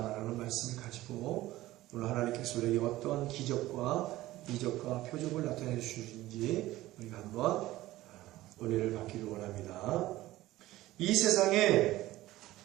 말씀을 가지고 오늘 하나님께서 우리에게 어떤 기적과 이적과 표적을 나타내 주시는지 우리가 한번 은혜를 받기를 원합니다. 이 세상에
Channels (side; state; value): left; quieter; 16.6 dB